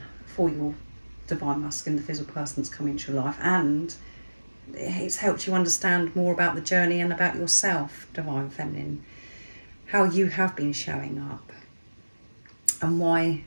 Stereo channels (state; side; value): inverted; both; correlation -1.00